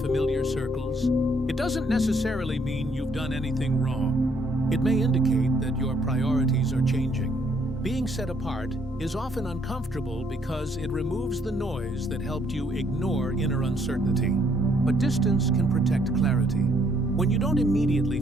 familiar circles, it doesn't necessarily mean you've done anything wrong. It may indicate that your priorities are changing. Being set apart is often uncomfortable because it removes the noise that helped you ignore inner uncertainty. But distance can protect clarity. When you don't immediately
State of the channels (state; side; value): normal; both; correlation 0.68